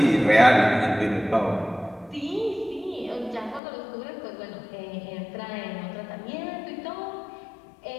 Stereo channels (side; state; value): right; drops out; at 3.6 s